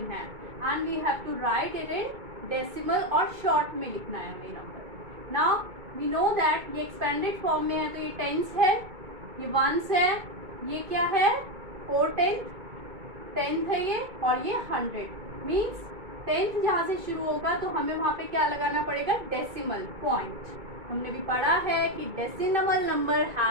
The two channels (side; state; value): left; late; 2.2 ms